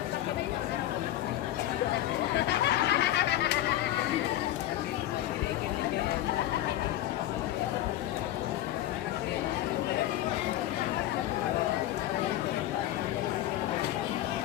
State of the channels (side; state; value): right; quieter; 13.8 dB